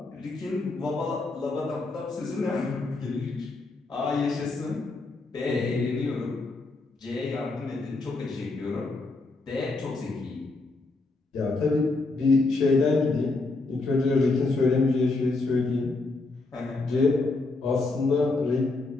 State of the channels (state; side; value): quieter; right; 3.4 dB